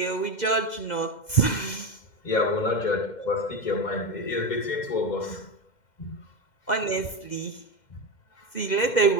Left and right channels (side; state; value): right; late; 2.1 ms